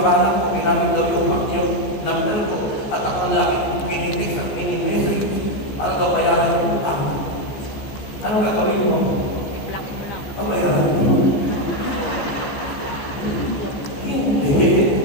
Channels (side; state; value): right; late; 14 ms